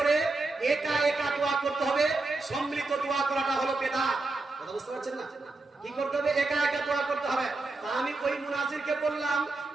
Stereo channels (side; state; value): left; quieter; 3.4 dB